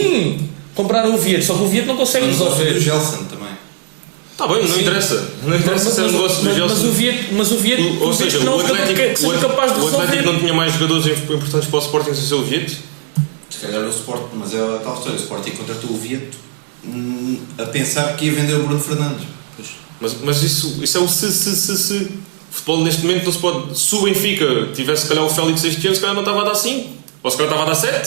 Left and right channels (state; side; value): silent; left; 62 dB below the other